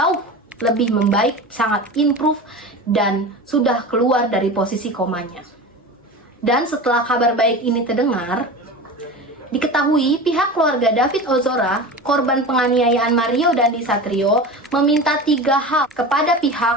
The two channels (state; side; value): normal; both; correlation 0.30